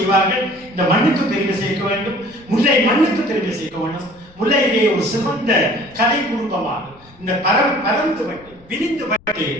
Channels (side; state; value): left; noise; rumble, 26 dB below the sound